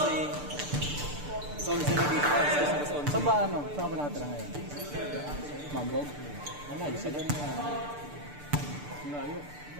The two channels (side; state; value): left; late; 6.8 ms